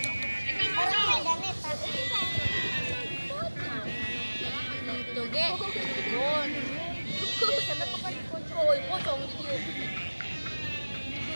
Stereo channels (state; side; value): inverted; both; correlation -1.00